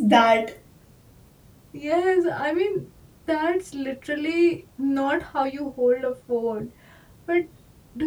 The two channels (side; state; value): both; identical; correlation 1.00